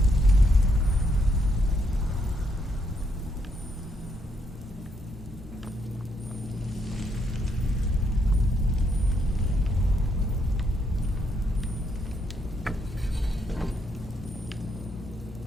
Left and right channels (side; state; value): both; normal; correlation 0.75